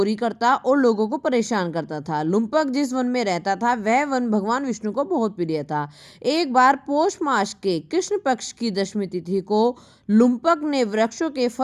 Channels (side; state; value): both; identical; correlation 1.00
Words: करता और लोगों को परेशान करता था। लुम्पक जिस वन में रहता था वह वन भगवान विष्णु को बहुत प्रिय था। एक बार पौष मास के कृष्ण पक्ष की दशमी तिथि को लुम्पक ने वृक्षों के